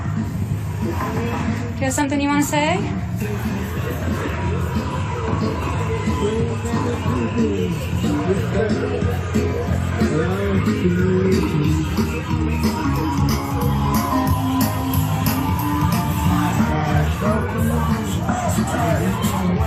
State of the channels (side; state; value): both; identical; correlation 1.00